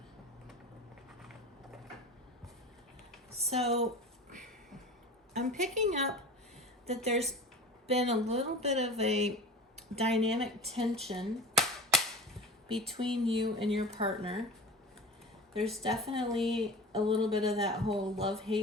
So I'm picking up that there's been a little bit of a dynamic tension between you and your partner. There's definitely a little bit of that whole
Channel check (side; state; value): both; normal; correlation 0.34